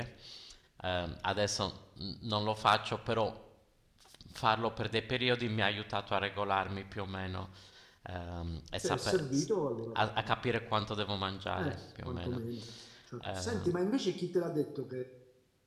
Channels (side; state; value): both; identical; correlation 1.00